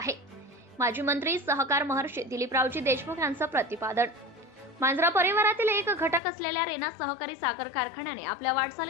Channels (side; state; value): right; drops out; at 6.2 s